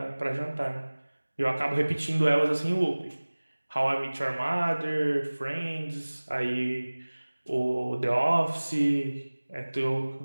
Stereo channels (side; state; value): both; inverted; correlation -1.00